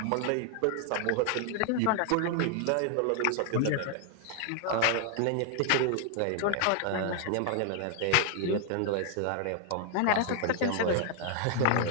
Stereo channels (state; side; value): different; both; correlation 0.00